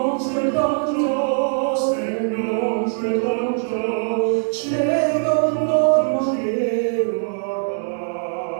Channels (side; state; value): left; silent; digital silence